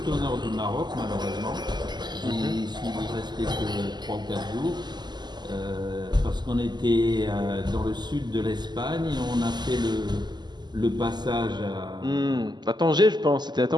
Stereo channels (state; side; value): late; left; 0.21 ms